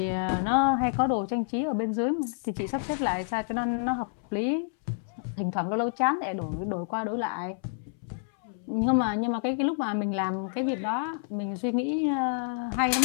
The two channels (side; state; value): right; silent; 59 dB below the other